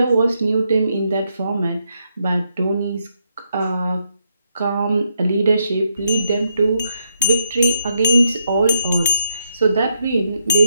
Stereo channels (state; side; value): inverted; both; correlation -0.79